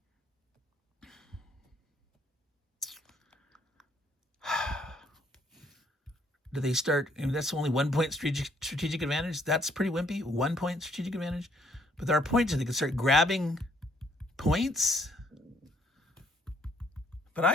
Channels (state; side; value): normal; both; correlation 0.67